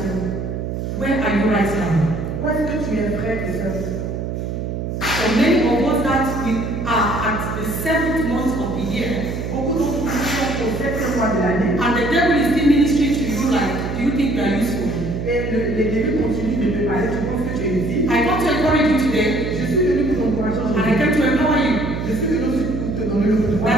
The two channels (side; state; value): right; noise; hum, 4 dB below the sound